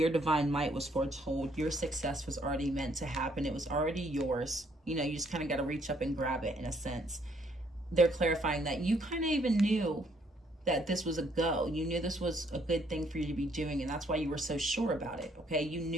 divine might was foretold. Your success was already meant to happen. It was already yours. You know, you just kind of got to reach up and grab it in a sense. They're clarifying that you kind of even knew that this was a go. You knew this was a good thing for you to be doing, and that's why you were so sure about it. Okay, you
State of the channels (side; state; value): both; normal; correlation 0.68